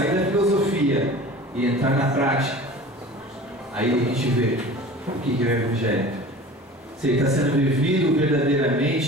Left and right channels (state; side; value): normal; both; correlation 0.40